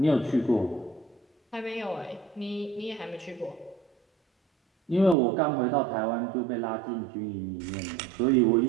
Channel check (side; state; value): left; drops out; at 5.2 s